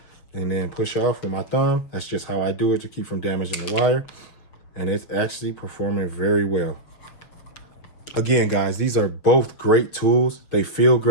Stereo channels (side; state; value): right; late; 7.0 ms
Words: and then push off with my thumb. That's just how I do it to keep from damaging the wire, and it's actually performing very well. Again, guys, these are both great tools. They feel